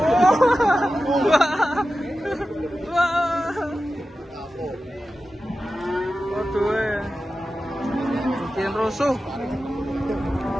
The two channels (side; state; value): both; normal; correlation 0.93